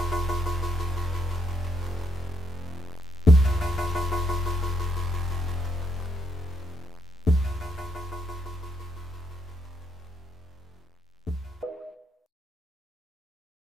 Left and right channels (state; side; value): normal; both; correlation 0.77